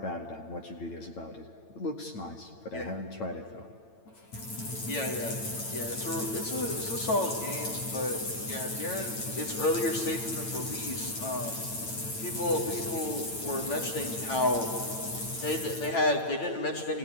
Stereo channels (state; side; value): late; right; 9.0 ms